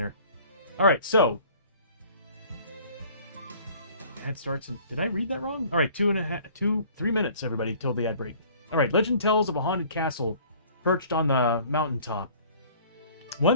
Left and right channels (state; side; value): inverted; both; correlation -0.51